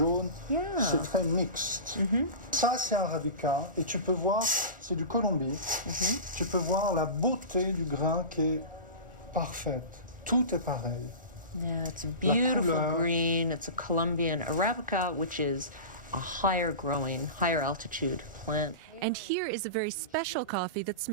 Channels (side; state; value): right; late; 1.4 ms